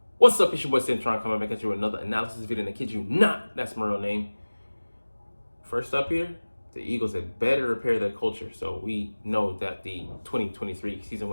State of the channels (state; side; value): inverted; both; correlation -1.00